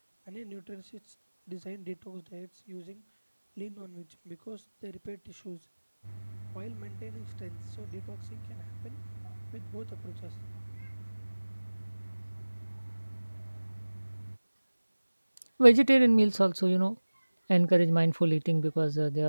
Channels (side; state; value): both; inverted; correlation -1.00